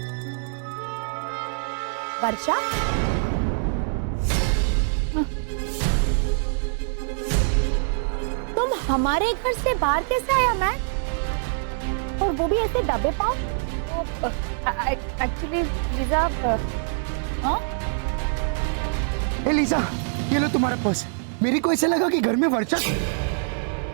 वर्षा, तुम हमारे घर से बाहर कैसे आया मैन? और वो भी ऐसे दबे पाओ? एक्चुअली लीजा, हाँ? ए लीजा, ये लो तुम्हारा पर्स। मेरे को ऐसा लगा कि घर में वर्षा,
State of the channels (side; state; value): left; silent; digital silence